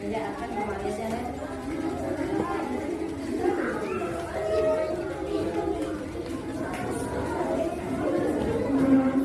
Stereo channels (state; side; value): identical; both; correlation 1.00